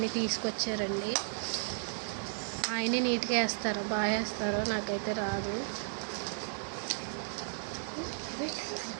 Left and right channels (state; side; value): silent; left; digital silence